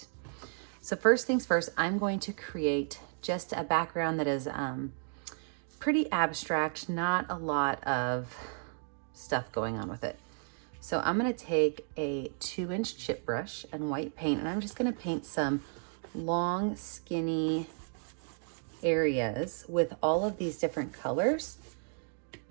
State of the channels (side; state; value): left; silent; 56 dB below the other